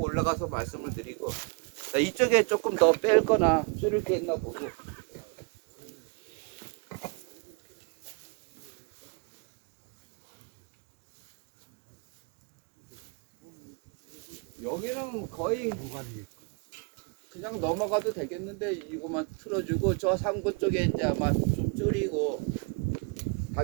올라가서 말씀을 드리고 자, 이쪽에 조금 더 뺄 거나 줄일 게 있나 보고 여기는 거의 그냥 넘어가도 되겠는데 이거만 틀어주고 저 상부 쪽에 이제 아마 좀 줄이고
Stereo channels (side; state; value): left; quieter; 32.7 dB